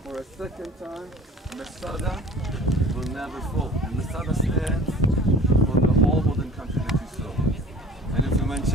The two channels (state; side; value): normal; both; correlation 0.45